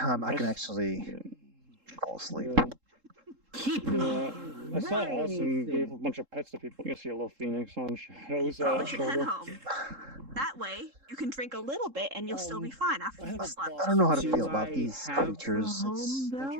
I can actually fall asleep. Yeah, I saw Austin gave a bunch of pets to people. You can see a little phoenix on Shadow's You should head shoulder. home. That way, you can drink a little bit and you'll still be fine after you've slept. I don't know how to feel about these creatures. It's,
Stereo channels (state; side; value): late; left; 3.7 ms